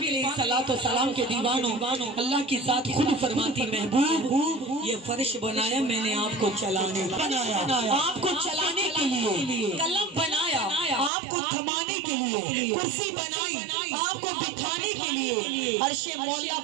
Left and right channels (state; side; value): drops out; left; at 11.1 s